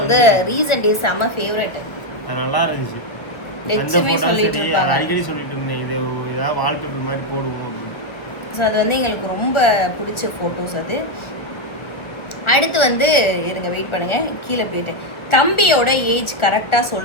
ரீசன்ட் டேஸ் செம ஃபேவரட். நல்லா இருந்துச்சு. லட்சுமி சொல்லிட்டு இருப்பாங்க, அடிக்கடி சொல்லிட்டு இருந்தேன், இது ஏதாவது வால்பேப்பர் மாதிரி போடுவோம் அப்படின்னு. ஸோ அது வந்து எங்களுக்கு ரொம்ப பிடிச்ச போட்டோஸ் அது. அடுத்து வந்து இருங்க, வெயிட் பண்ணுங்க, கீழே போயிட்டேன். தம்பியோட ஏஜ் கரெக்டா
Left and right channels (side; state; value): right; late; 1.5 ms